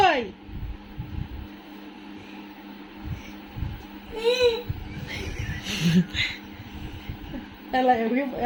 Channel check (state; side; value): identical; both; correlation 1.00